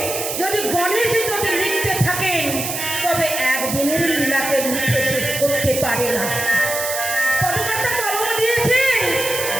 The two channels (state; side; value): noise; right; hiss, 4 dB below the sound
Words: যদি গণেশ যদি লিখতে থাকেন তবে একদিনের লীলাকে লিখে শেষ করতে পারে না। পদকর্তা কলম দিয়েছেন